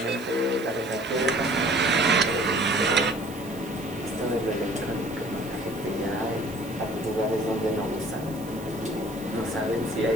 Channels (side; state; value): right; noise; hiss, 19 dB below the sound